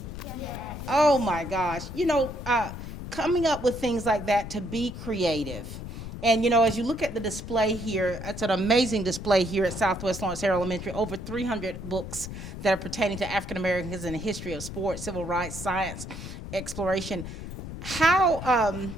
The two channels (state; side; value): noise; left; rumble, 9 dB below the sound